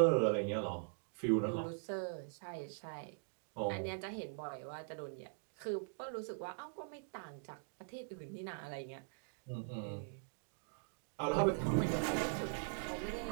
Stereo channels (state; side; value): silent; left; digital silence